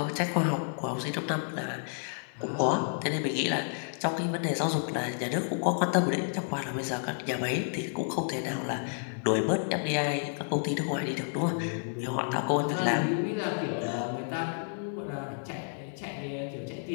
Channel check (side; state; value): right; silent; 57 dB below the other